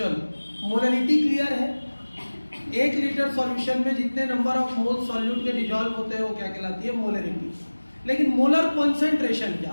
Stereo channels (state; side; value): inverted; both; correlation -1.00